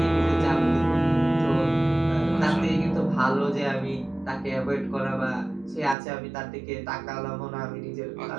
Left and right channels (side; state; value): left; drops out; at 6.0 s